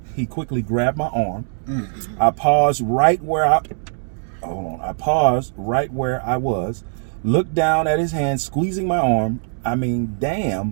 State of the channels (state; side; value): silent; left; digital silence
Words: He quickly grabbed my arm. I paused right where I was, looked down at his hand, squeezing my arm. I mean,